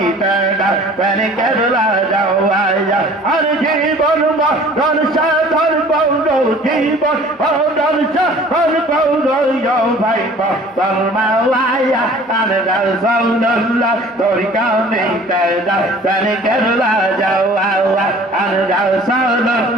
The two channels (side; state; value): both; normal; correlation 0.49